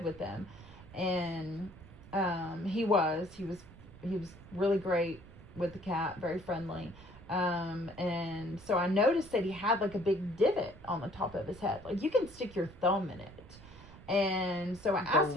with them. And he was really great with the cat, very friendly. And so I noticed that he had like a big divot on the top of his head. Like you can stick your thumb in it. And so I asked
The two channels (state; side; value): noise; right; rumble, 19 dB below the sound